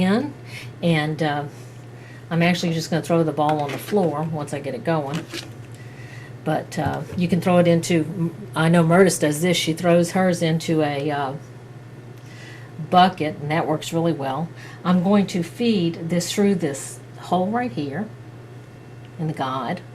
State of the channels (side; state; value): both; identical; correlation 1.00